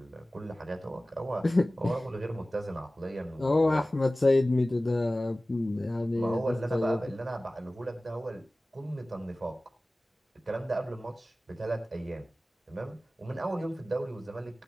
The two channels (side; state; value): both; normal; correlation 0.97